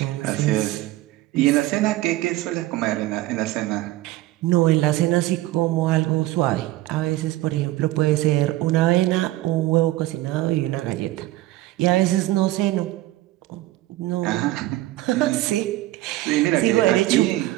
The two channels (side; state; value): left; quieter; 16.6 dB